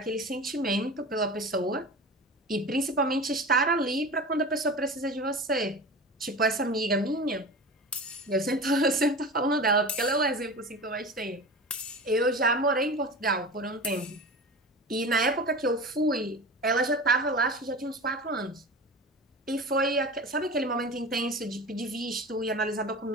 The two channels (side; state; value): both; normal; correlation 0.32